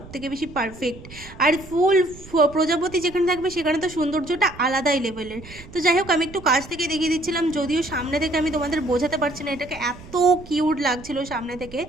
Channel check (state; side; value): noise; right; rumble, 18 dB below the sound